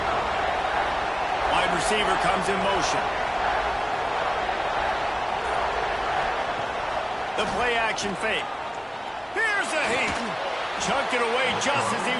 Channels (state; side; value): identical; both; correlation 1.00